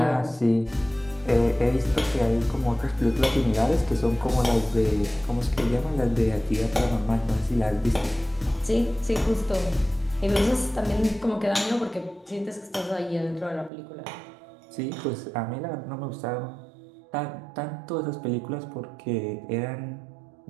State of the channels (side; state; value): left; drops out; at 13.7 s